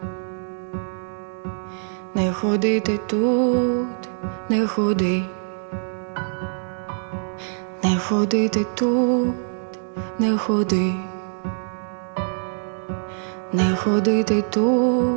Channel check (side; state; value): left; silent; digital silence